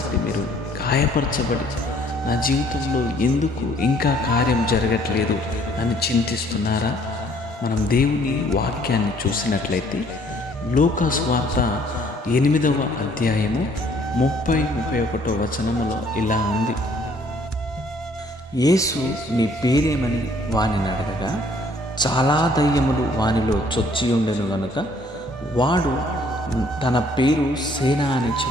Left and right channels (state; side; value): normal; both; correlation 0.61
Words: మీరు గాయపరచబడి నా జీవితంలో ఎందుకు ఇంకా కార్యం జరగట్లేదు అని చింతిస్తున్నారా? మనం దేవుని వాక్యాన్ని చూసినట్లయితే లూకా సువార్త 8వ అధ్యాయము 30-31 వచనములో ఇలా ఉంది. యేసు నీ పేరేమని వానిని అడగగా, చాలా దయ్యములు వానిలో చొచ్చి ఉండెను గనుక వాడు తన పేరు సేన అని